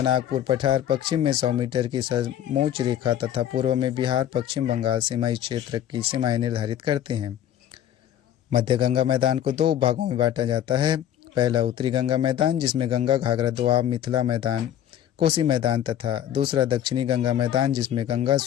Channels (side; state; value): right; quieter; 10.8 dB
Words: नागपुर पठार, पश्चिम में 100 मीटर की समोच्च रेखा तथा पूर्व में बिहार, पश्चिम बंगाल सीमाई क्षेत्र की सीमाएं निर्धारित करते हैं। मध्य गंगा मैदान को 2 भागों में बांटा जाता है। पहला उत्तरी गंगा मैदान, जिसमें गंगा, घाघरा, दोआब, मिथिला मैदान, कोसी मैदान तथा दूसरा दक्षिणी गंगा मैदान, जिसमें गंगा,